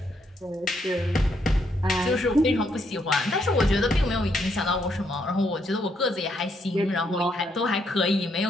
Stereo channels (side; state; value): both; normal; correlation 0.75